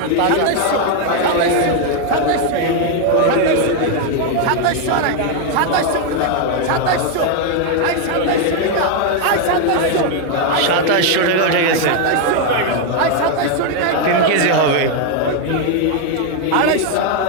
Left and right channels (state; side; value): different; both; correlation 0.01